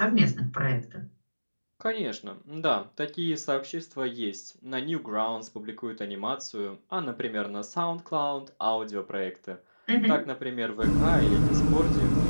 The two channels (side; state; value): both; inverted; correlation -1.00